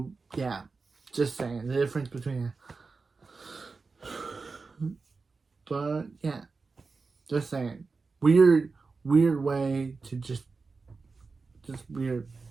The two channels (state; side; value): quieter; left; 4.3 dB